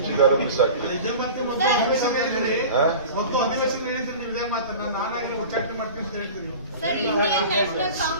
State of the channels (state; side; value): inverted; both; correlation -0.38